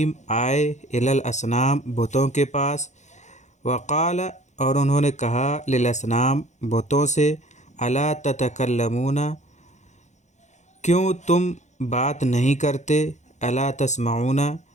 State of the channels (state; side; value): late; right; 0.34 ms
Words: آئے، الی الاصنام، بتوں کے پاس۔ وقال، اور انہوں نے کہا، للاصنام، بتوں سے، الا تتکلمون، کیوں تم بات نہیں کرتے، الا تسمعون،